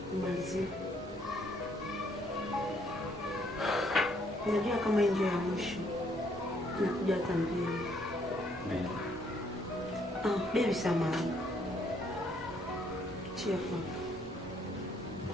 Malizie. Unajua kama ndio ya mwisho. Nakuja hata mbili. Baby samahani. Chifu.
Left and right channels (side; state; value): both; normal; correlation 0.68